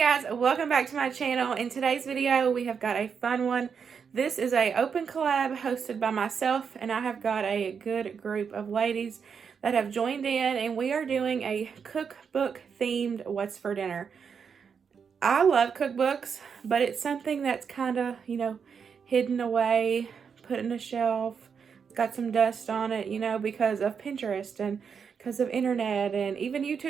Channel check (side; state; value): left; quieter; 6.5 dB